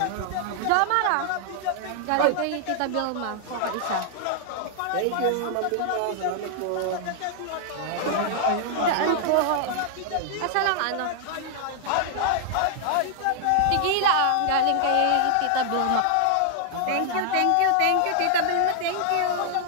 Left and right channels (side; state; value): both; different; correlation 0.00